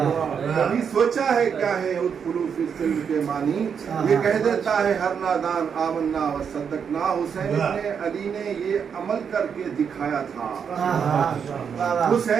کبھی سوچا ہے کیا ہے ادخلو فی السلم کے معنی یہ کہہ دیتا ہے ہر نادان آمنا وصدقنا. حسین ابن علی نے یہ عمل کر کے دکھایا تھا.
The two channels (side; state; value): left; quieter; 7.0 dB